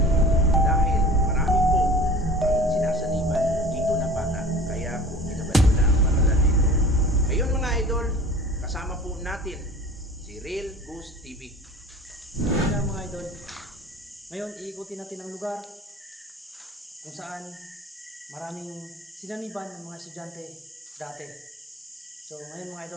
dahil marami po ang sinasaniban dito na bata. Kaya po pinabandona ang paaralan dito. Ngayon mga idol, kasama po natin si Real Ghost TV. Kaya mga idol, ngayon iikutin natin ang lugar kung saan maraming sinaniban ng mga estudyante dati. So ngayon mga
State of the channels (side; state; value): both; normal; correlation 0.41